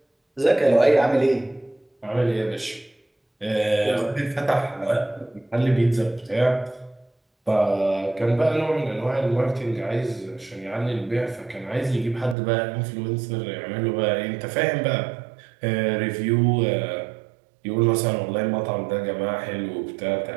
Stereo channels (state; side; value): drops out; left; at 12.4 s